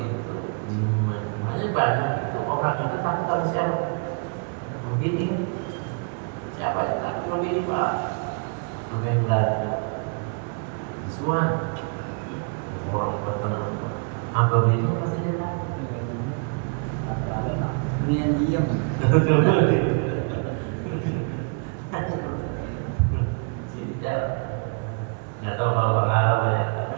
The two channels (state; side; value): quieter; left; 38.6 dB